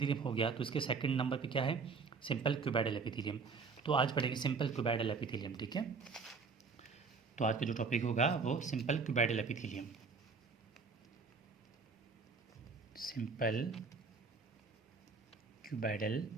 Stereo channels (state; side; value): quieter; left; 4.8 dB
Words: हो गया, तो इसके सेकंड नंबर पे क्या है, सिंपल क्यूबाइडल एपिथेलियम। तो आज पढ़ेंगे सिंपल क्यूबाइडल एपिथेलियम, ठीक है। तो आज का जो टॉपिक होगा वो simple cuboidal epithelium. Simple cuboidal